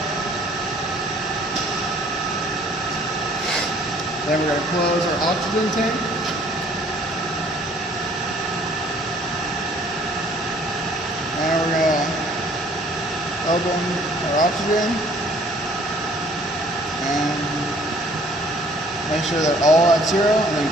Then we're going to close our oxygen tank. And we're going to open our oxygen and make sure they're all at 0 and then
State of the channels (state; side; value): normal; both; correlation 0.58